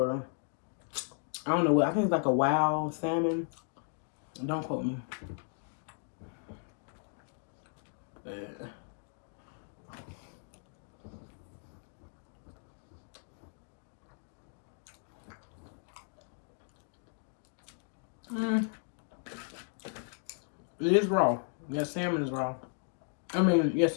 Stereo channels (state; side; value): silent; right; 54 dB below the other